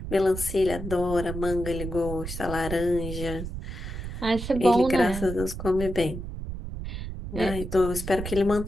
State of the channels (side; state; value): right; noise; rumble, 7 dB below the sound